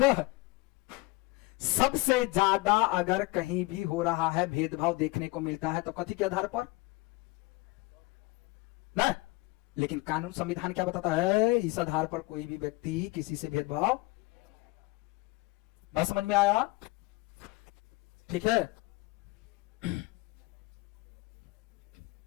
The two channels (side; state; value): right; quieter; 22.7 dB